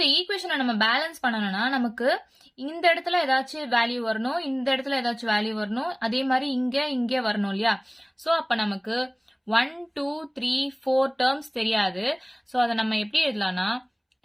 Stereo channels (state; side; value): identical; both; correlation 1.00